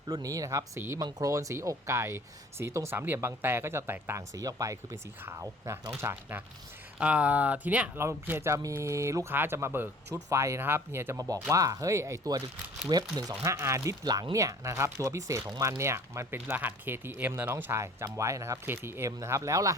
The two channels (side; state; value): both; normal; correlation 0.50